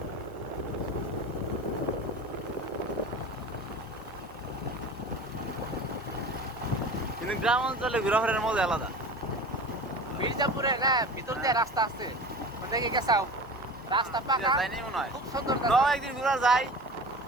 কিন্তু গ্রাম অঞ্চলে ঘোরাফেরার মজা আলাদা। মির্জাপুরে না ভিতর দিয়ে রাস্তা আছে ওদিকে গেছাও রাস্তা পাকা যাইনি মনে হয়। খুব সুন্দর একদিন ঘোরা যায়।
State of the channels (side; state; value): both; normal; correlation 0.35